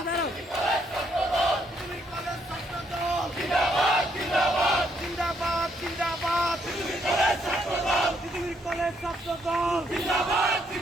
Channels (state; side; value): normal; both; correlation 0.73